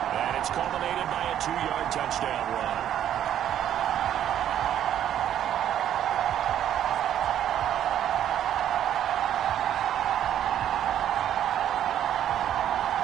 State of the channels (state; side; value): quieter; left; 10.6 dB